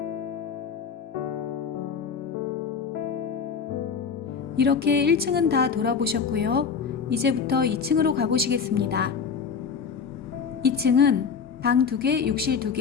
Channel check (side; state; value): right; quieter; 6.1 dB